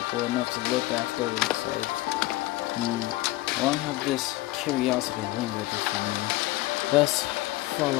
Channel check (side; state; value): right; quieter; 18.5 dB